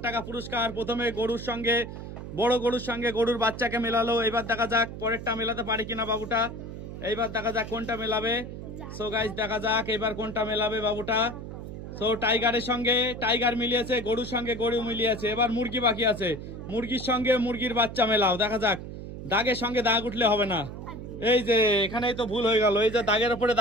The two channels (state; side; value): noise; right; hum, 10 dB below the sound